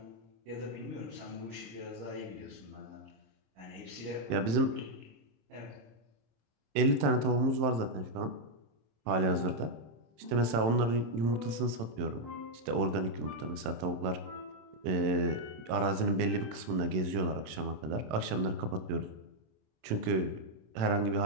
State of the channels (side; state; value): left; late; 27 ms